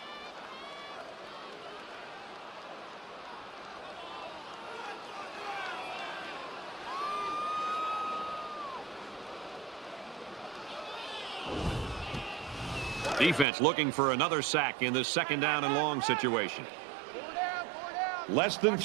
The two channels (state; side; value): drops out; left; at 13.5 s